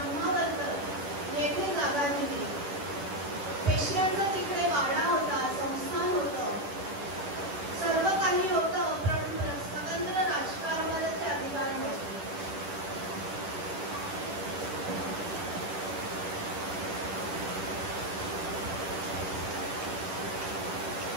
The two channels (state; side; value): late; left; 10 ms